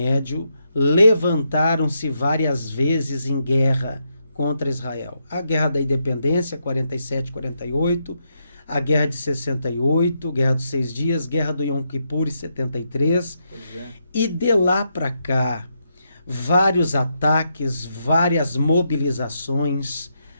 levantaram-se várias vezes em guerra contra Israel. A Guerra da Independência, 47, 48, a Guerra de 68, Guerra dos 6 Dias, Guerra do Yom Kippur, 73. E de lá para cá, vários ataques, várias mobilizações,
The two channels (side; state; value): both; inverted; correlation -0.81